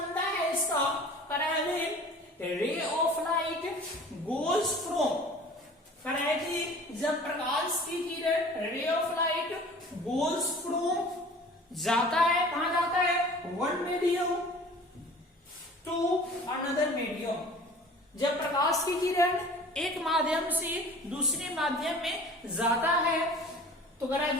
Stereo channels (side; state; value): both; normal; correlation 0.45